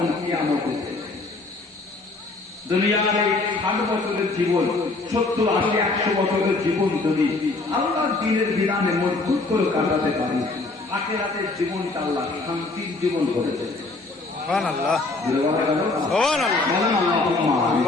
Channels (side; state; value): right; quieter; 3.4 dB